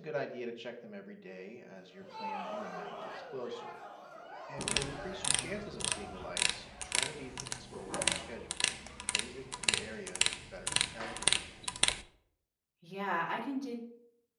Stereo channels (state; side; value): identical; both; correlation 1.00